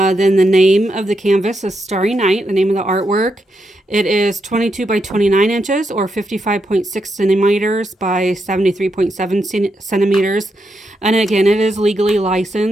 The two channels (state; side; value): normal; both; correlation 0.82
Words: the name of the canvas is Starry Night, the name of the artwork. It is 22 by 29 inches or 55.6 centimeters by 73.7 centimeters. And again, it is legally